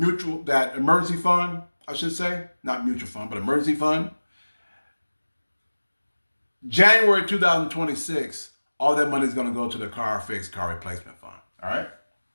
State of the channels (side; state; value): both; inverted; correlation -1.00